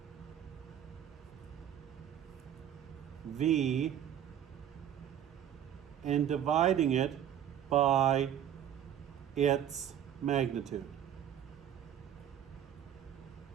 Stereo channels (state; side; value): quieter; left; 10.2 dB